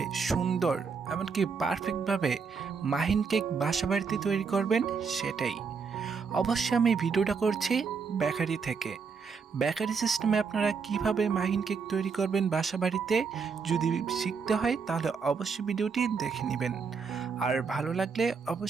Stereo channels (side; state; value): left; quieter; 5.5 dB